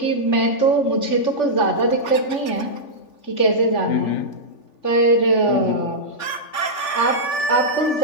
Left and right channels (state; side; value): late; right; 3.5 ms